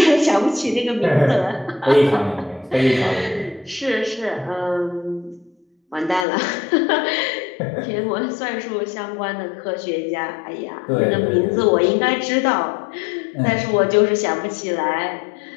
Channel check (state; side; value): drops out; right; at 6.2 s